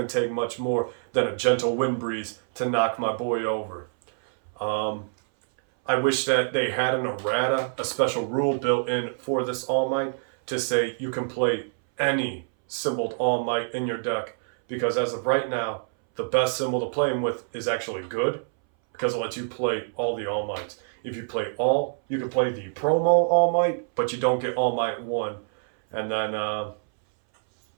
to take much more than a gentle wind breeze to knock my boy over. I wish that they had an errata, a special rule built in for this All Might, to say you can play any symboled All Might in your deck. Because as of right now, the best symbol to play him with is actually good, because it lets you play all the All Mights. If you play all, you can play the promo All Might, but you don't get All Might 1. And then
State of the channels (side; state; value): left; silent; 60 dB below the other